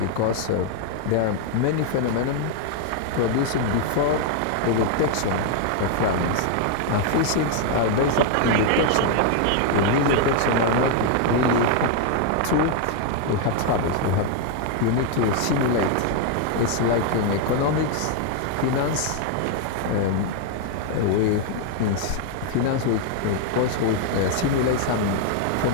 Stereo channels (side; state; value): both; different; correlation 0.00